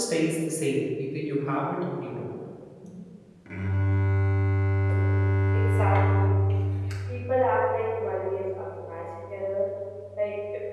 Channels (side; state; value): both; identical; correlation 1.00